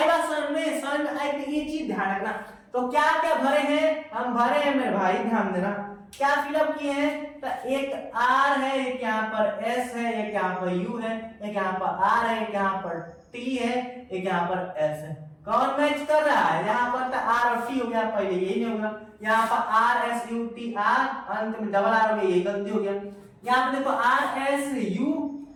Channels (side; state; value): both; identical; correlation 1.00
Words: बात समझ में आई, ये चीज ध्यान रखना। तो क्या क्या भरे हैं, हम भरे हैं मेरे भाई, ध्यान देना, क्या फिलअप किए हैं, तो एक आर है, एक यहाँ पर एस है, एक यहाँ पर यू है, एक यहाँ पर आर है, एक यहाँ पर टी है, एक यहाँ पर एस है। कौन मैच कर रहा है, यहाँ पर तो आर और टी हो गया, पहले यही नहीं होगा, यहाँ पर R S U T R, अंत में डबल आर हो गया, यही गलती हो गया। यहाँ पर देखो आर एस यू